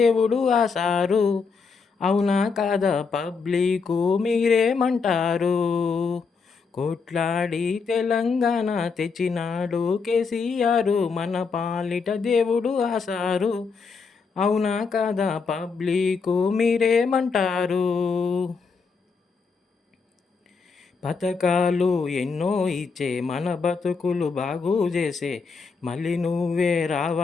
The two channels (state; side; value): quieter; right; 5.0 dB